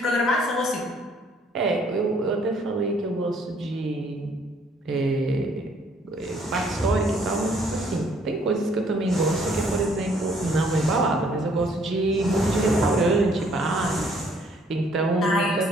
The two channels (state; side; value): normal; both; correlation 0.63